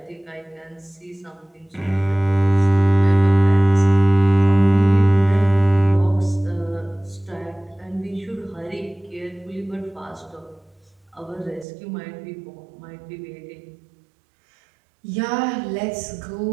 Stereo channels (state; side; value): drops out; left; at 11.7 s